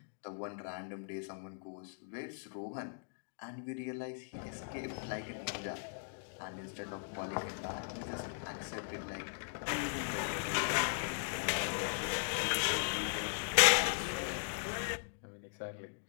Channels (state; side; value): silent; right; digital silence